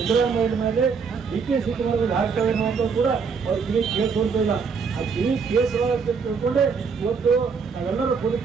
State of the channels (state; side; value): quieter; left; 5.6 dB